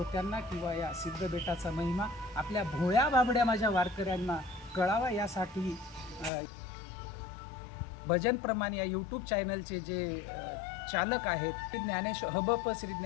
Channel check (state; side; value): drops out; right; at 6.3 s